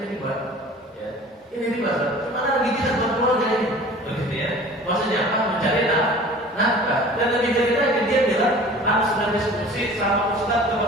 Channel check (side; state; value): both; normal; correlation 0.44